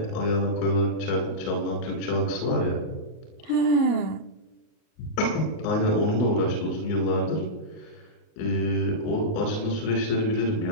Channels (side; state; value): right; late; 38 ms